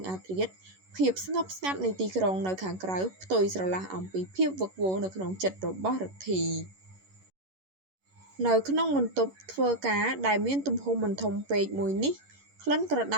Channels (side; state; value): left; late; 11 ms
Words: អាធ្រាត្រភាពស្ងប់ស្ងាត់នៃទីក្រុងនៅខាងក្រៅផ្ទុយស្រឡះអំពីភាពវឹកវរនៅក្នុងចិត្តរបស់រទ្ធីនៅក្នុងបន្ទប់ធ្វើការដែលមានទំហំមិនធំពេកមួយនេះក្លិនក្រដ